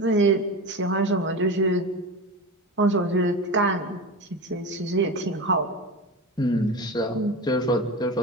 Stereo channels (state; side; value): normal; both; correlation 0.26